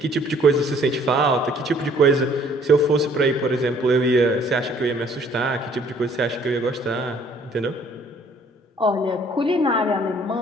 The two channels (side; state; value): both; normal; correlation 0.59